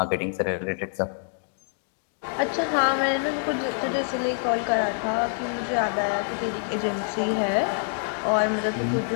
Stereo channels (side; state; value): right; silent; digital silence